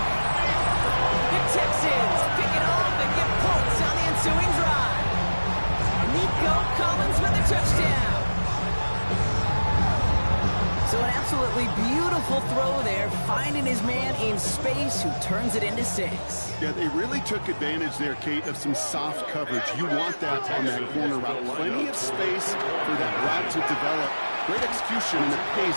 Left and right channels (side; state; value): both; inverted; correlation -1.00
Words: The Texans pick it off and get points on the ensuing drive. Nico Collins with a touchdown. So an absolutely beautiful throw there, finding his man in space who turns it into 6. Yeah, they really took advantage there, Kate, of some soft coverage. You want that on that corner route. Plenty of space for that route to develop. Great execution, and it pays